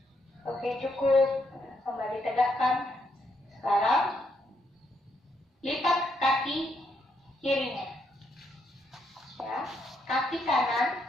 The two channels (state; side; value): normal; both; correlation 0.76